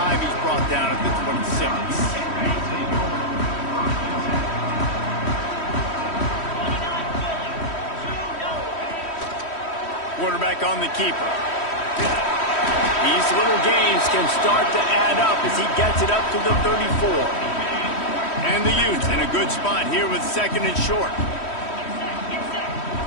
He's brought down at the 26. Quarterback on the keeper. These little gains can start to add up as he gets it up to the 34. And the Utes in a good spot here with 2nd and short.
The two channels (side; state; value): right; late; 3.1 ms